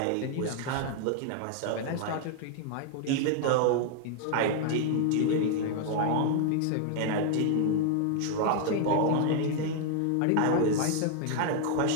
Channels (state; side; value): different; both; correlation 0.00